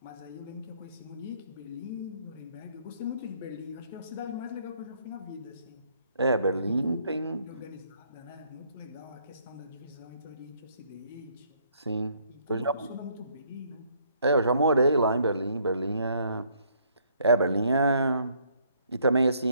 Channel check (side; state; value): both; inverted; correlation -0.66